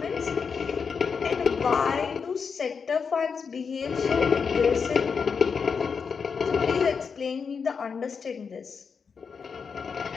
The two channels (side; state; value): right; quieter; 5.8 dB